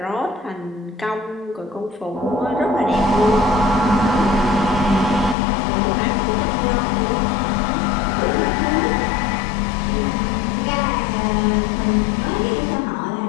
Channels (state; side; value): drops out; right; at 5.4 s